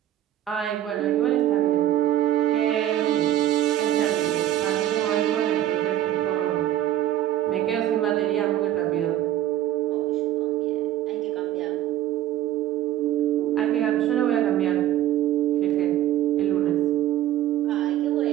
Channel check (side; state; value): left; quieter; 12.8 dB